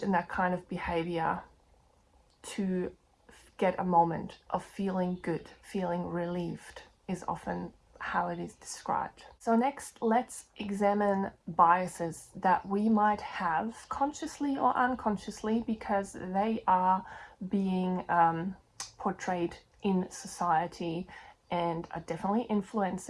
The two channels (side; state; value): both; identical; correlation 1.00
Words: that kind of behavior to get a moment of feeling good, feeling relieved is often how it is described. So next, let's examine biases that we might have consciously or unconsciously, because they are being portrayed in society and are definitely